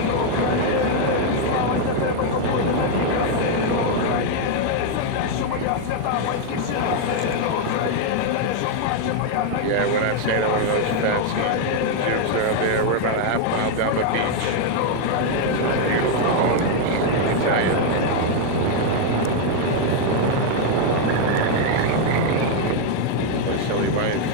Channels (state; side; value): different; both; correlation 0.00